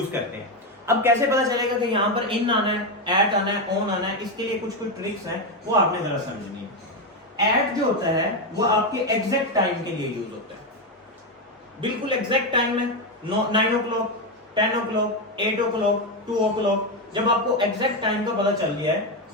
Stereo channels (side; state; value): both; normal; correlation 0.09